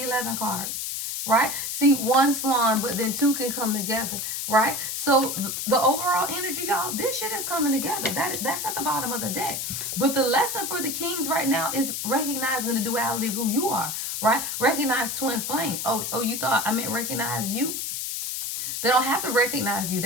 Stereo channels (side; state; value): left; noise; hiss, 3 dB below the sound